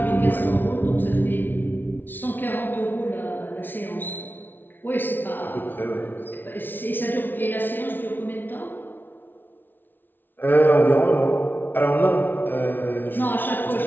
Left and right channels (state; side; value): late; right; 0.094 ms